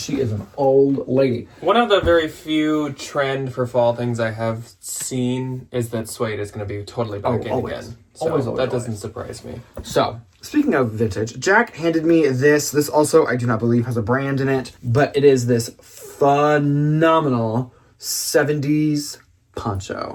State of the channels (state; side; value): identical; both; correlation 1.00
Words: she is an old lady. One of the very few trend for fall things I have seen is that suede is going to be totally back in again. So Always. That doesn't surprise me. So, speaking of vintage, Jack handed me this. This also, I do not believe, has a brand in it, but it is this phenomenal 70s